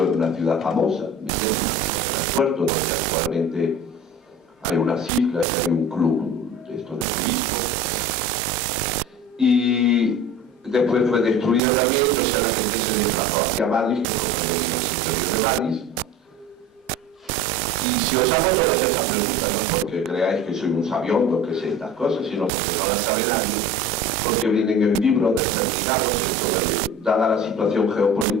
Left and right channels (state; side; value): normal; both; correlation 0.39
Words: en una ciudad famosa. Mesrema, el puerto donde actualmente hay unas islas, hay un club de esto de turismo. Y después fue destruida también, entonces la gente se desplazó hacia Badis, que fue el interior de Badis. Y si os hago todas esas preguntas, no porque creáis que soy un sabiondo que sé estas cosas, sino porque no las sabe nadie, porque vienen en libros determinados, dada la situación